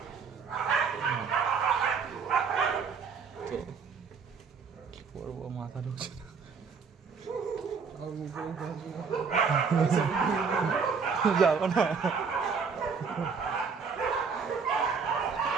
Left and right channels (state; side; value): quieter; left; 5.6 dB